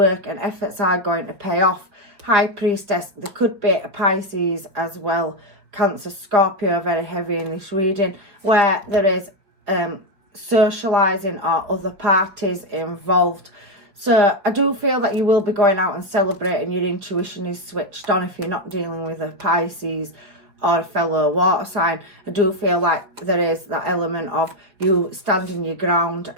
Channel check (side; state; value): left; late; 5.2 ms